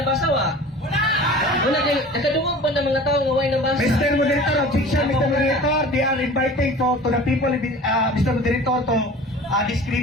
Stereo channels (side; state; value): both; normal; correlation 0.41